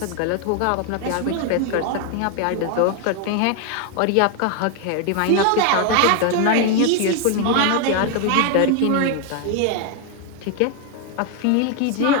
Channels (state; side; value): different; both; correlation 0.01